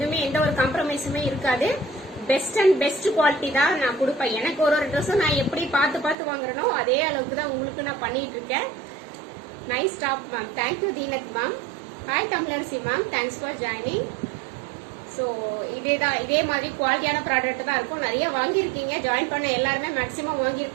எந்த ஒரு காம்ப்ரமைஸுமே இருக்காது. பெஸ்ட் அண்ட் பெஸ்ட் குவாலிட்டி தான் நான் கொடுப்பேன். எனக்கு ஒரு ட்ரெஸ்ஸும் நான் எப்படி பார்த்து வாங்குறனோ அதே அளவுக்கு தான் உங்களுக்கு நான் பண்ணிட்டு இருக்கேன். Nice top ma'am. Thank you Deenath ma'am. Hi Tamilarasi ma'am, thanks for joining. So இதே மாதிரி குவாலிட்டியான ப்ராடக்ட் தான் இருக்கும். நிறைய வாங்கியிருக்கீங்க, ஜாயின் பண்ண எல்லாருமே மேக்ஸிமம்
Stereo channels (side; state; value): left; drops out; at 6.2 s